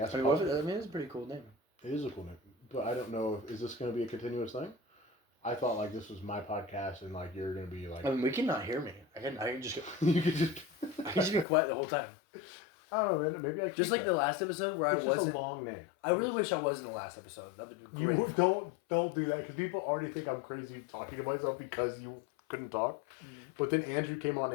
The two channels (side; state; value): right; drops out; at 11.5 s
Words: I S-Pod. mean, it's a pretty cool name. It is a cool name, but I don't know. Is this going to be a continuous thing? I thought like this was my podcast, and like you're going to be like. I mean, we cannot hear me. I can just you could just. I can just be quiet the whole time. I don't know, man. Maybe I. Just like the last episode where It's I just wasn't. a long name. I really wish I was in the last episode. That would be great. You don't do that because people already think I'm crazy talking to myself because you couldn't talk. But then Andrew came on